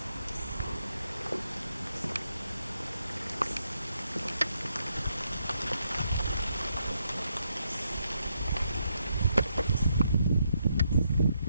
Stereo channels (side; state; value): both; inverted; correlation -0.78